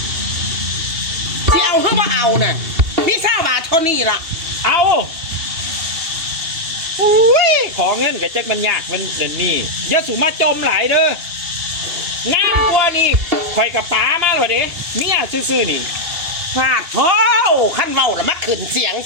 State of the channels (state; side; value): late; left; 2.8 ms